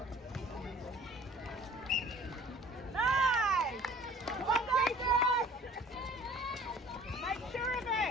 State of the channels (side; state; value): both; normal; correlation 0.50